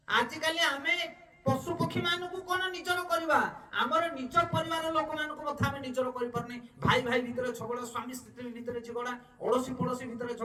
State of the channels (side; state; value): both; identical; correlation 1.00